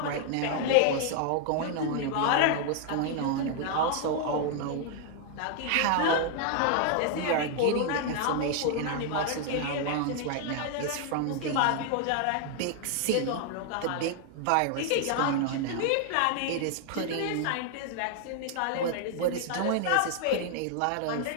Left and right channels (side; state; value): both; different; correlation 0.00